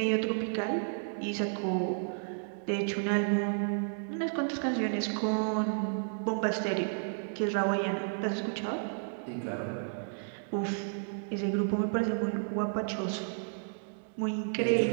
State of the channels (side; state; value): left; silent; digital silence